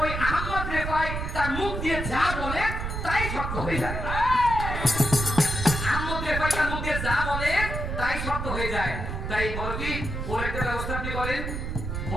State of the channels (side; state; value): right; noise; rumble, 4 dB below the sound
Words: আহমদ রেফাই তার মুখ দিয়ে যা বলে তাই সত্য হয়ে যায় আহমদ রেফাই তার মুখ দিয়ে যা বলে তাই সত্য হয়ে যায় তাই বড়পীর ওর একটা ব্যবস্থা আপনি করেন